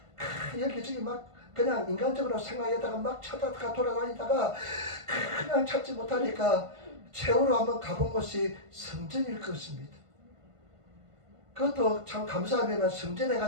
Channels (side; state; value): left; late; 1.5 ms